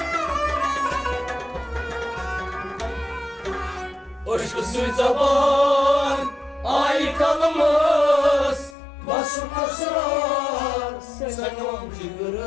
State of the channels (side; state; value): right; drops out; at 8.8 s